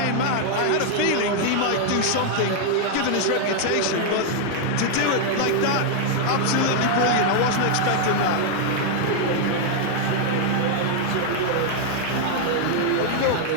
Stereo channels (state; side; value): different; both; correlation -0.01